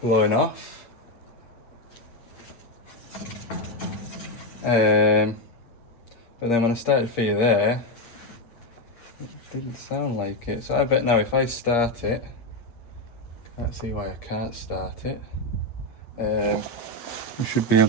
blowing off. But then when I started for you there, it didn't sound like it. So I bet now if I start it, can't see why I can't start it. You should be able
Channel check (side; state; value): right; late; 8.6 ms